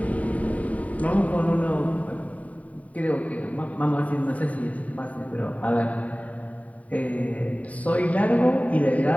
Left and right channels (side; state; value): right; late; 0.069 ms